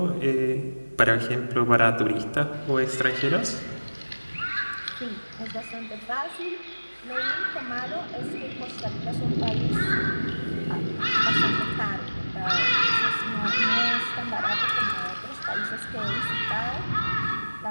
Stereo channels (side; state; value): both; inverted; correlation -1.00